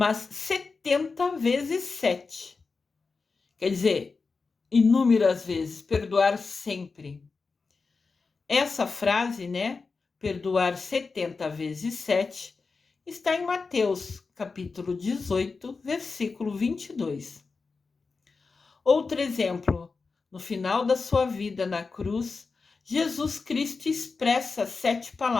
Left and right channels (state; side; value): quieter; right; 4.4 dB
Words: 70 vezes 7. Quer dizer, inúmeras vezes, perdoar sempre. Essa frase, né, perdoar 70 vezes 7, está em Mateus, capítulo 18, versículo 22. Outro exemplo, no final da sua vida na cruz, Jesus Cristo expressa 7